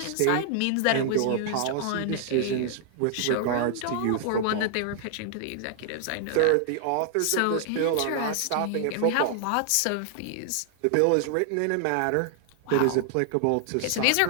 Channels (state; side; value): different; both; correlation 0.00